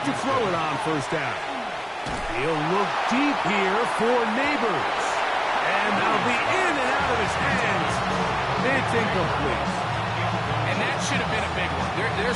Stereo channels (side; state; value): both; identical; correlation 1.00